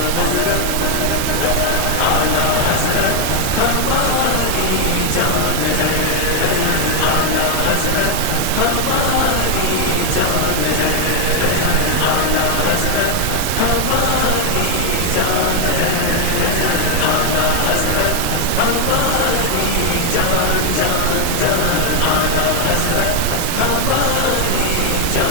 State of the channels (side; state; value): both; different; correlation 0.01